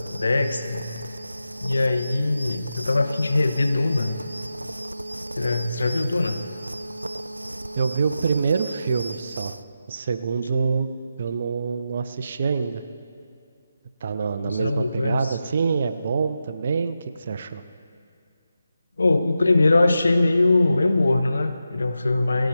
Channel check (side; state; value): both; inverted; correlation -0.89